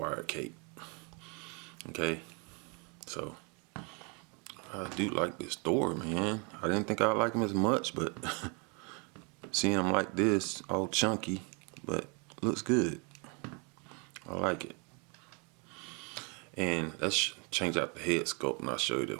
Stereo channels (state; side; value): quieter; left; 33.7 dB